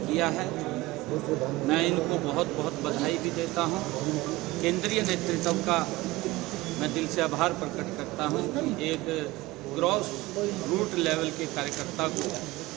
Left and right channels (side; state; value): left; quieter; 19.5 dB